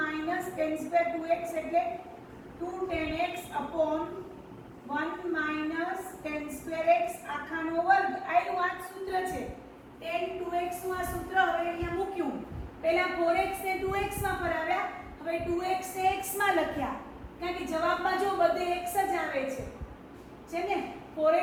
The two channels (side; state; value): both; identical; correlation 1.00